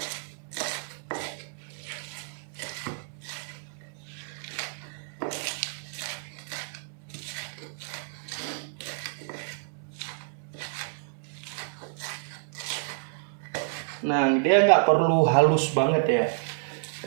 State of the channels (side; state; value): left; silent; 58 dB below the other